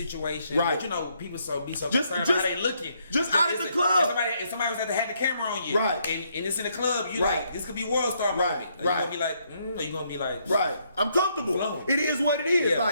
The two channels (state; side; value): inverted; both; correlation -0.73